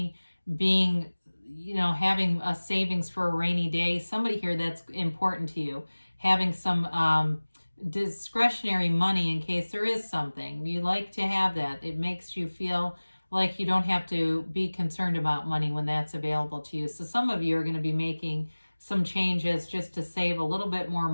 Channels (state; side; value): inverted; both; correlation -1.00